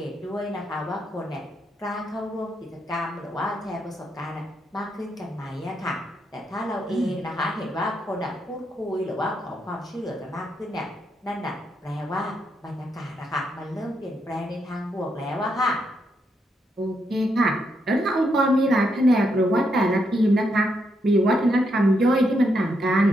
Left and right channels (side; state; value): both; normal; correlation 0.79